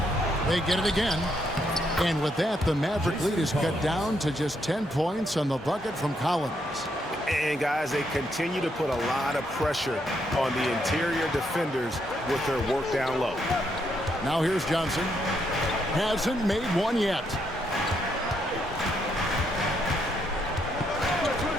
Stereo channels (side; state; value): both; normal; correlation 0.76